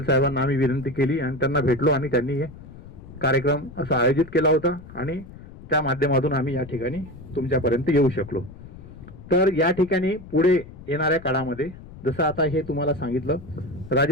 साहेबांना आम्ही विनंती केली आणि त्यांना भेटलो आणि त्यांनी हे कार्यक्रम असा आयोजित केला होता आणि त्या माध्यमातून आम्ही या ठिकाणी तुमच्यापर्यंत येऊ शकलो. तर या ठिकाणी पुढे येणाऱ्या काळामध्ये जसं आता हे तुम्हाला सांगितलं,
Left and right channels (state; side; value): noise; left; rumble, 17 dB below the sound